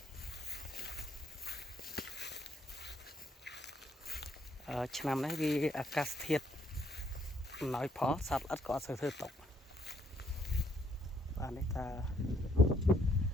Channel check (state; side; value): normal; both; correlation 0.70